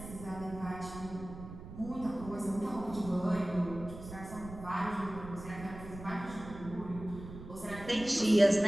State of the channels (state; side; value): noise; right; rumble, 13 dB below the sound